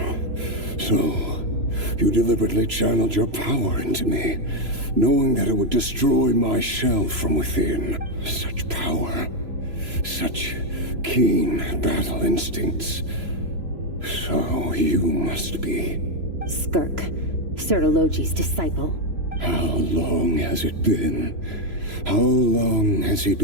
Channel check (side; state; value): left; late; 3.0 ms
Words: So, you deliberately channeled your power into me, knowing that it would destroy my shell from within. Such power. Such keen battle instincts. So, you must be... Skirk, Sertologi's disciple. How long has it been? How long has he